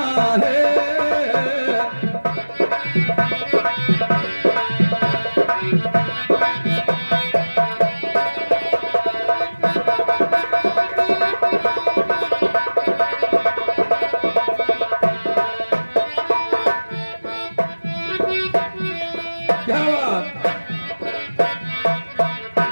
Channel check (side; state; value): both; inverted; correlation -1.00